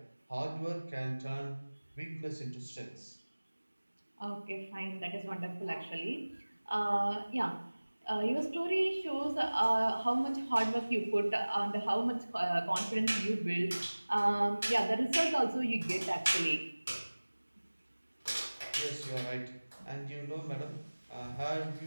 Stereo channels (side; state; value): both; inverted; correlation -1.00